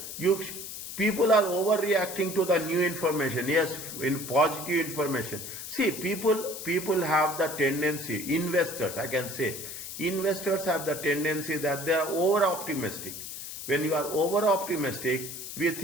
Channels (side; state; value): left; noise; hiss, 9 dB below the sound